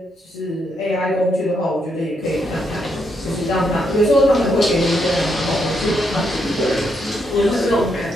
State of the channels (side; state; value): both; normal; correlation 0.78